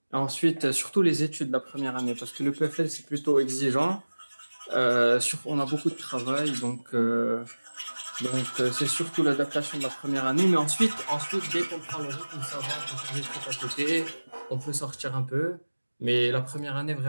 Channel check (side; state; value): both; inverted; correlation -1.00